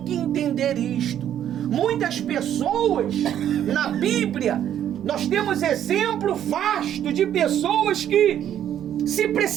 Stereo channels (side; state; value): left; quieter; 10.5 dB